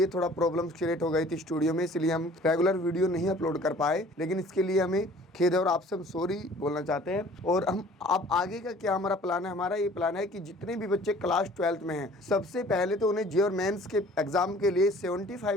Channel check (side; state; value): both; normal; correlation 0.51